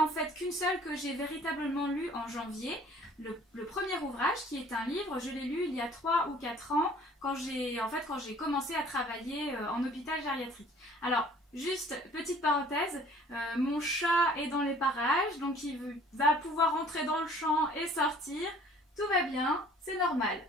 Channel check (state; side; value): normal; both; correlation 0.53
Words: en fait qu'une seule que j'ai véritablement lue en janvier. Le premier ouvrage, qui est un livre, je l'ai lu il y a 3 ou 4 ans, quand j'ai commencé à travailler en hôpital gériatrique. Alors, juste petite parenthèse, mon chat est dans les parages, donc il va pouvoir entrer dans le champ et sortir. Tout va bien, c'est normal.